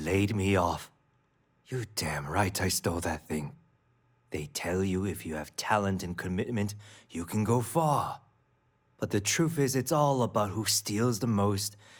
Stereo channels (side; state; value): both; identical; correlation 1.00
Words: me off. You damn right I stole that thing. They tell you if you have talent and commitment, you can go far. But the truth is, it's all about who steals the most